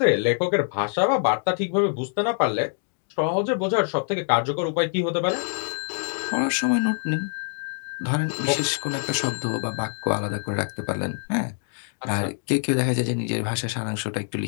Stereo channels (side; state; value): right; silent; 62 dB below the other